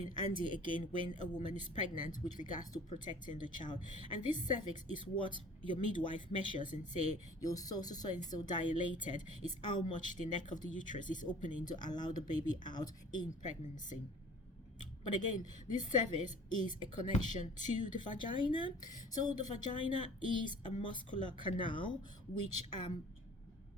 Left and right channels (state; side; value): normal; both; correlation 0.48